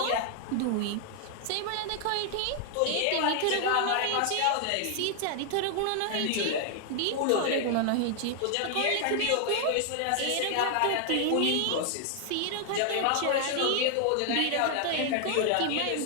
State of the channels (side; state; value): both; different; correlation 0.00